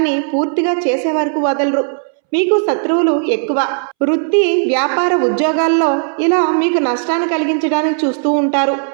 పూర్తిగా చేసే వరకు వదలరు. మీకు శత్రువులు ఎక్కువ. వృత్తి, వ్యాపార, ఉద్యోగాల్లో ఇలా మీకు నష్టాన్ని కలిగించడానికి చూస్తూ ఉంటారు.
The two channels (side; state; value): left; silent; 67 dB below the other